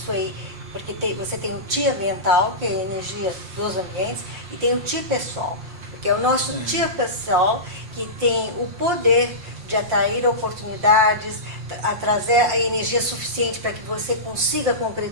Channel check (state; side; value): late; left; 5.7 ms